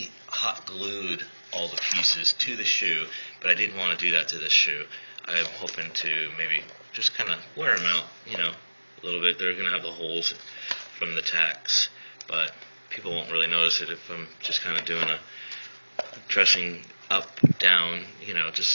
hot glued all the pieces to the shoe, but I didn't want to do that to this shoe. I'm hoping to maybe just kind of wear them out, a little bit. They're going to have the holes from the tacks, but people won't really notice it if I'm just kind of doing a dressing up, down,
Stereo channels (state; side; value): inverted; both; correlation -1.00